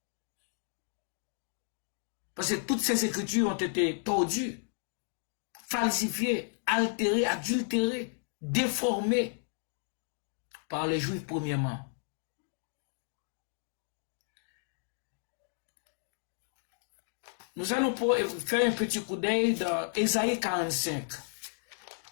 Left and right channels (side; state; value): right; silent; digital silence